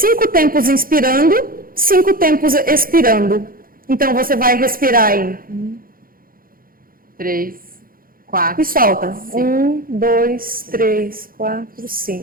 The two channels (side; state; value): left; late; 0.42 ms